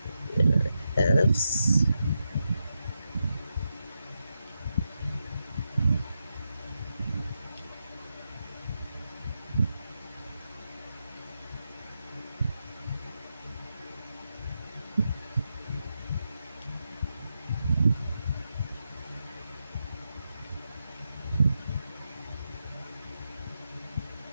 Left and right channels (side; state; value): both; inverted; correlation -0.87